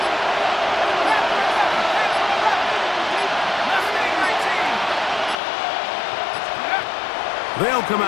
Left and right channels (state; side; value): drops out; right; at 5.4 s